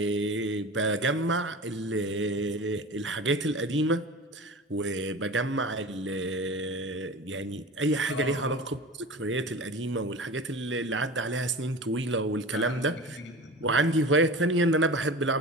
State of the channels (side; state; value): both; normal; correlation 0.34